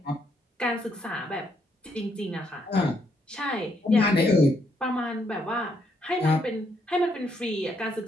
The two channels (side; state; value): both; normal; correlation 0.74